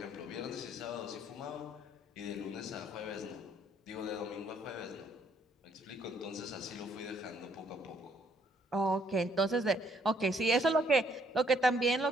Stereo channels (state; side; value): normal; both; correlation 0.67